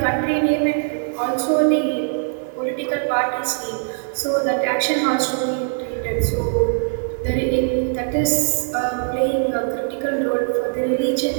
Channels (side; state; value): left; silent; 65 dB below the other